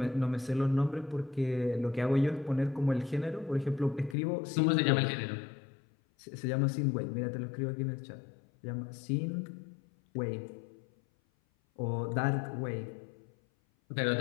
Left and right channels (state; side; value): drops out; right; at 4.2 s